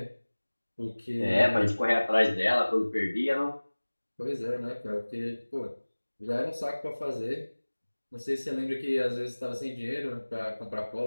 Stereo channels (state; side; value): inverted; both; correlation -1.00